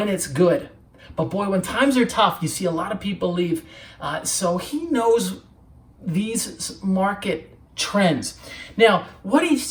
it's good. But boy, when times are tough, you see a lot of people leave. So he knows these market trends. Now, what he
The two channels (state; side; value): identical; both; correlation 1.00